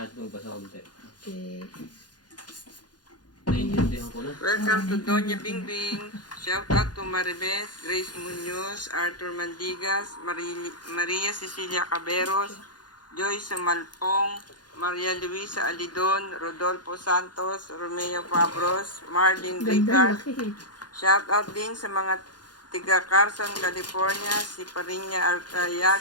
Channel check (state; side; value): late; right; 0.69 ms